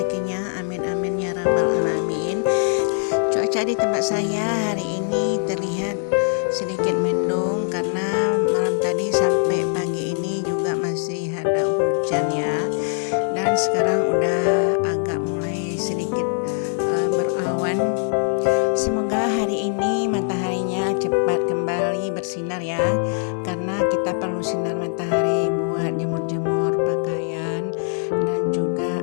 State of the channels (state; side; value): silent; right; 61 dB below the other